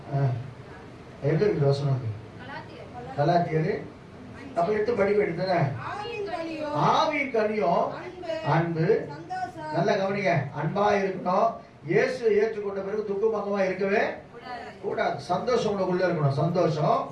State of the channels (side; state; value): both; identical; correlation 1.00